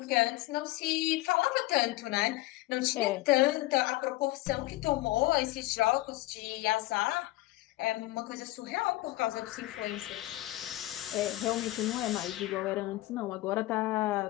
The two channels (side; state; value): right; quieter; 18.3 dB